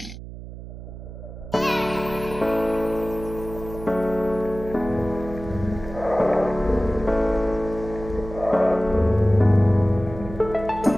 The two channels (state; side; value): noise; right; hum, 12 dB below the sound